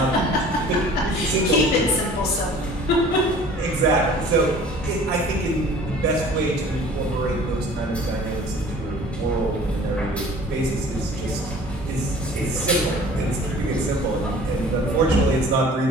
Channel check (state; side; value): normal; both; correlation 0.47